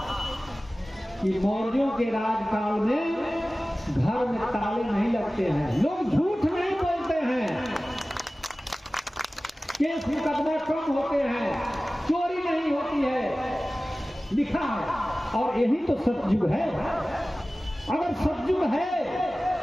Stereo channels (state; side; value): normal; both; correlation 0.97